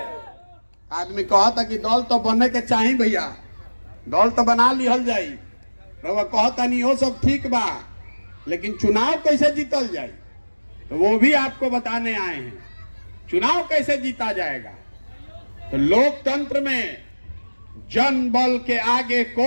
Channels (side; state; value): both; inverted; correlation -1.00